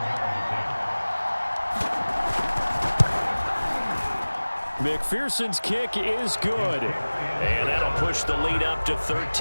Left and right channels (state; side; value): inverted; both; correlation -1.00